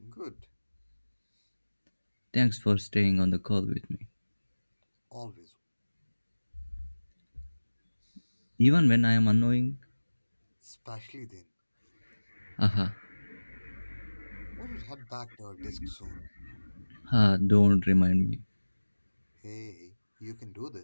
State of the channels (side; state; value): both; inverted; correlation -1.00